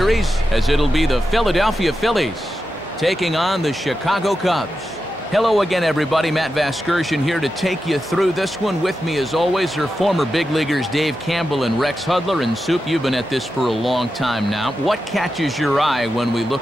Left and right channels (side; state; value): both; normal; correlation 0.90